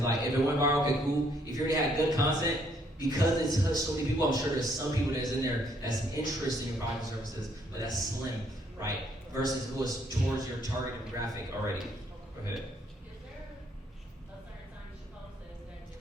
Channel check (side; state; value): both; normal; correlation 0.68